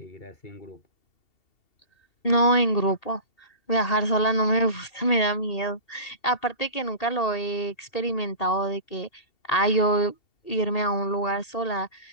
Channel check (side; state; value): right; late; 2.7 ms